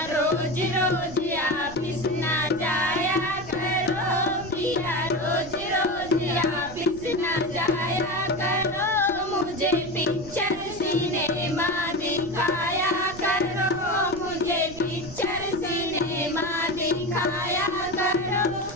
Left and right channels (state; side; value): noise; right; rumble, 16 dB below the sound